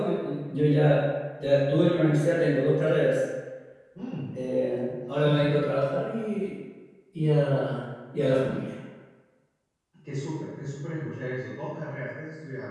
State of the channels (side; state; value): both; identical; correlation 1.00